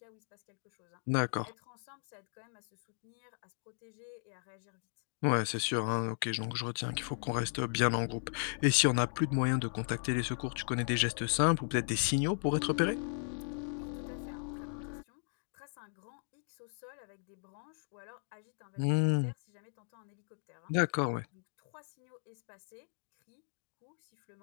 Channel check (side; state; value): right; silent; digital silence